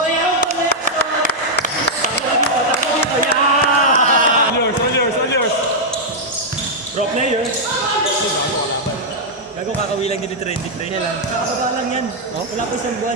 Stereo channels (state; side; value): normal; both; correlation -0.05